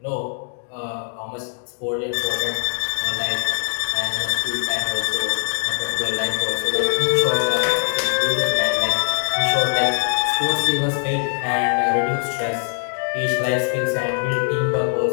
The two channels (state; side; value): silent; right; 64 dB below the other